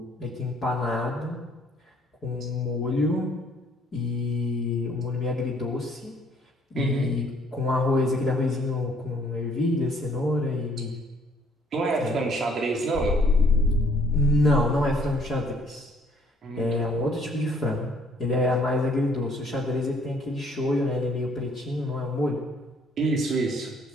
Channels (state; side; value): normal; both; correlation 0.62